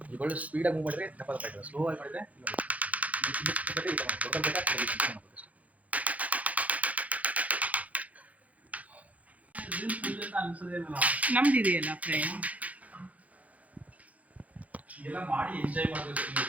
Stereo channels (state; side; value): late; left; 0.070 ms